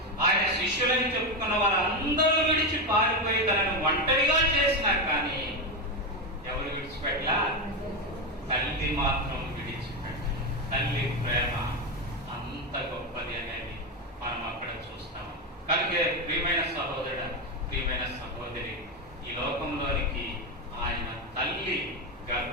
ఆయన శిష్యులని చెప్పుకున్న వారు అందరూ విడిచి పారిపోయి తనను ఒంటరిగా చేసినా కానీ ఎవరు విడిచిపెట్టలా? తల్లి మాత్రం విడిచిపెట్టాలి. తల్లి ప్రేమ అంత గొప్పది అనేది మనం అక్కడ చూస్తాం. కనుక ప్రియమైన సహోదరుడు, ప్రియమైన సహోదరి, ఈ లోకంలోనికి ఆయన తల్లి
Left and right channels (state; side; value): normal; both; correlation 0.11